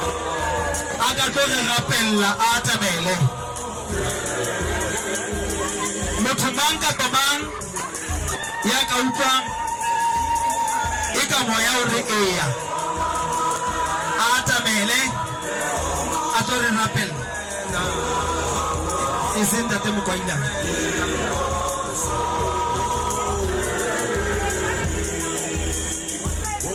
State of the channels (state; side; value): identical; both; correlation 1.00